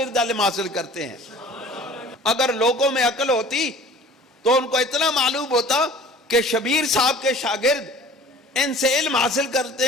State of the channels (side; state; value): both; normal; correlation 0.46